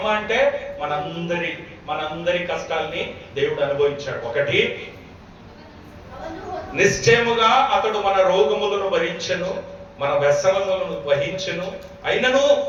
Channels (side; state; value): both; identical; correlation 1.00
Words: అంటే మనందరి కష్టాల్ని దేవుడు అనుభవించాడు. ఒకటి, నిశ్చయముగా అతడు మన రోగములను భరించెను, మన వ్యసనములను వహించెను, అయినను